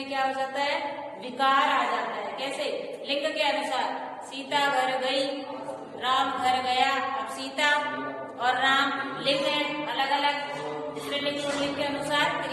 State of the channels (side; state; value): both; identical; correlation 1.00